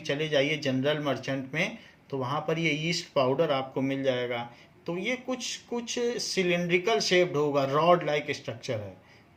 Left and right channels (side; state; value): both; identical; correlation 1.00